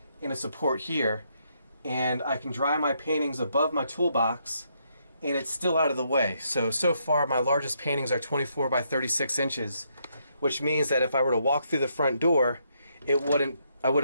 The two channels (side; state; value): both; inverted; correlation -0.75